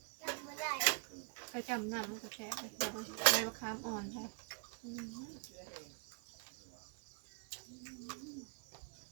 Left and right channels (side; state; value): left; quieter; 37.0 dB